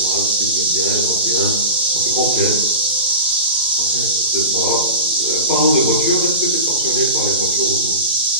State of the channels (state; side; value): inverted; both; correlation -0.32